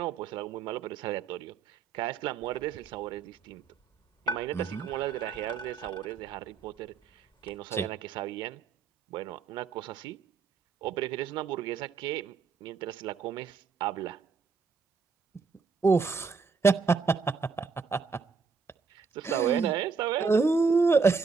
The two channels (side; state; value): left; quieter; 5.2 dB